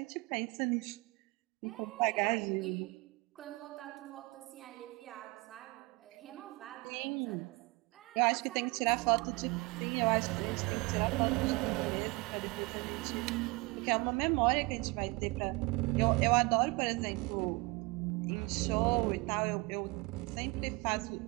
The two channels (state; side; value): quieter; left; 25.5 dB